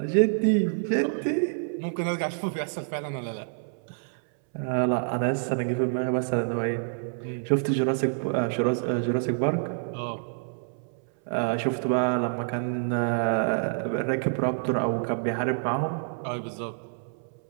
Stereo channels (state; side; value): silent; left; 60 dB below the other